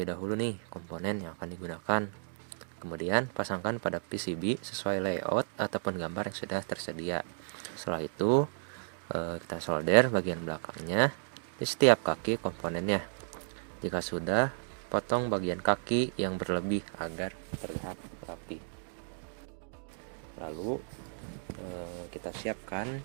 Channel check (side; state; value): left; silent; digital silence